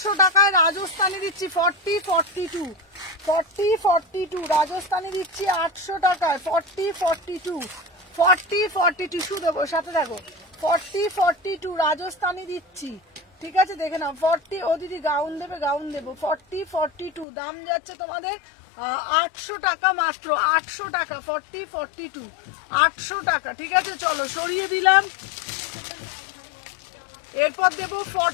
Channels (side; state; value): right; drops out; at 17.2 s